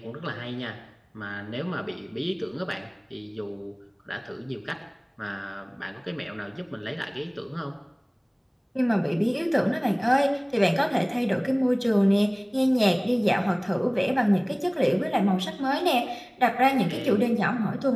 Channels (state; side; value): identical; both; correlation 1.00